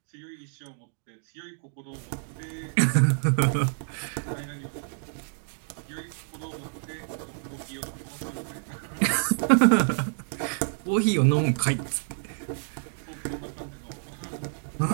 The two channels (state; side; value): silent; left; digital silence